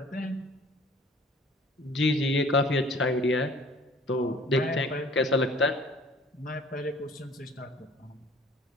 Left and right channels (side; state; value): both; normal; correlation 0.51